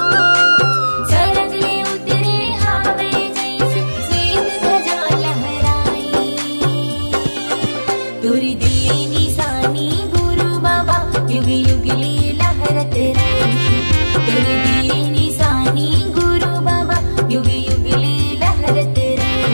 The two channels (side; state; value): both; inverted; correlation -1.00